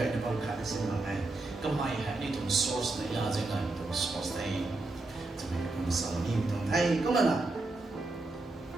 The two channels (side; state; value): left; quieter; 3.1 dB